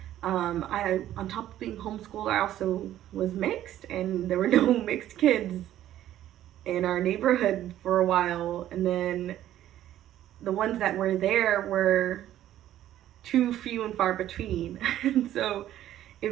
I, on top of being homeschooled, I also was mixed, and there were no mixed kids in our neighborhood for a while. And then the ones that were there were too few and far between. And so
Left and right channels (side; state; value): left; quieter; 12.6 dB